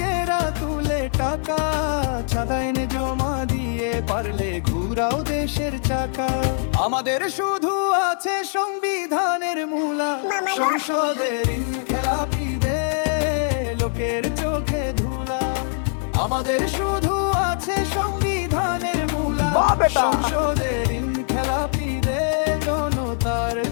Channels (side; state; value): right; silent; digital silence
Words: তুলে টাকা, চাঁদা এনে জমা দিয়ে পারলে ঘুরাও দেশের চাকা। আমাদের শুধু আছে সংবিধানের মূলা। সংসদের খেলাপিদের লোকের চোখে ধুলা, আমাদের শুধু আছে সংবিধানের মূলা। সংসদের খেলাপিদের জনতার